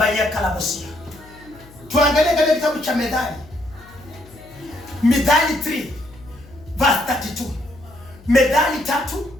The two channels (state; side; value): noise; left; hum, 23 dB below the sound